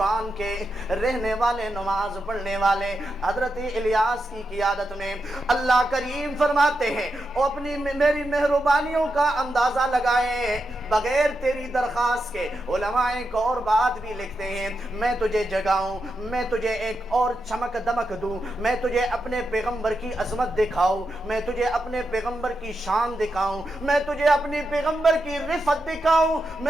کے رہنے والے، نماز پڑھنے والے، حضرت الیاس کی قیادت میں اللہ کریم فرماتے ہیں او اپنی میری مہربانیوں کا اندازہ لگائے بغیر تیری درخواست کے۔ علماء ایک اور بات بھی لکھتے ہیں، میں تجھے جگاؤں، میں تجھے ایک اور چمک دمک دوں، میں تجھے اپنے پیغمبر کی عظمت دکھاؤں، میں تجھے اپنے پیغمبر کی شان دکھاؤں، میں تجھے اپنی پیغمبر کی رفعت دکھاؤں،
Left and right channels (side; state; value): both; normal; correlation 0.86